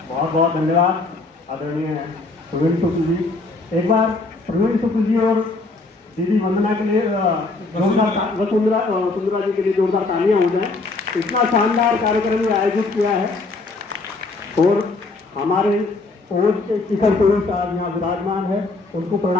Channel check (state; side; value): quieter; right; 3.5 dB